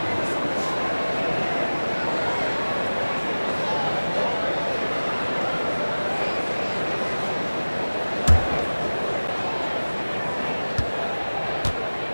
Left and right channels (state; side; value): inverted; both; correlation -1.00